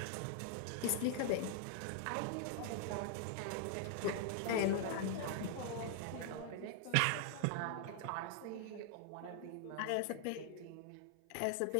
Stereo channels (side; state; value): both; different; correlation 0.00